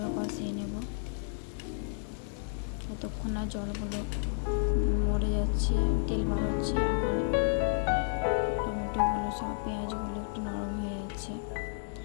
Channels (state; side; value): silent; right; digital silence